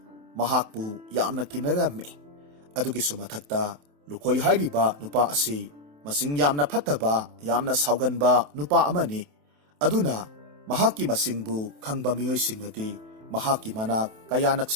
ꯃꯍꯥꯛꯄꯨ ꯌꯥꯝꯅ ꯀꯤꯅꯔꯝꯃꯤ꯫ ꯑꯗꯨꯒꯤꯁꯨ ꯃꯊꯛꯇ ꯂꯨꯈꯣꯏ ꯍꯥꯏꯔꯤꯕ ꯅꯨꯄꯥ ꯑꯁꯤ ꯃꯁꯤꯡ ꯌꯥꯝꯅ ꯐꯠꯇꯕ, ꯌꯥꯝꯅ ꯁꯥꯎꯒꯟꯕ ꯅꯨꯄꯥ ꯑꯃꯅꯤ꯫ ꯑꯗꯨꯅ ꯃꯍꯥꯛꯀꯤ ꯃꯁꯤꯡꯕꯨ ꯈꯪꯕ ꯃꯤꯑꯣꯏꯁꯤꯡꯅꯗꯤ ꯃꯍꯥꯛꯀꯤ ꯃꯅꯥꯛ ꯀꯌꯥ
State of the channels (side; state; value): left; late; 27 ms